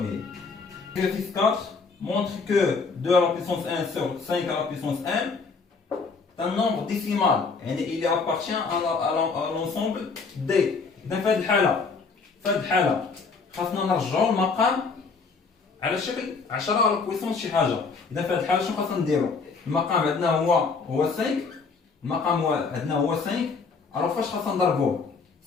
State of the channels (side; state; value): right; quieter; 4.7 dB